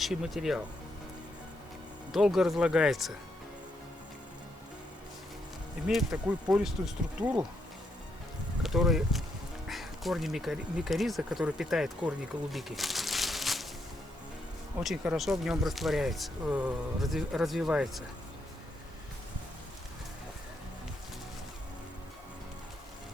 материал. Долго разлагается. Имеет такую пористую структуру, которая корни микориза, который питает корни голубики, очень хорошо в нем растворяется, развивается.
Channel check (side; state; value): both; normal; correlation 0.78